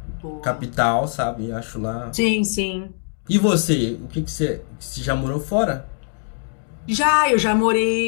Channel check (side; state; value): right; silent; digital silence